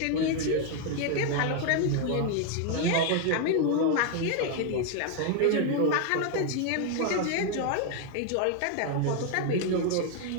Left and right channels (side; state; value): both; different; correlation 0.01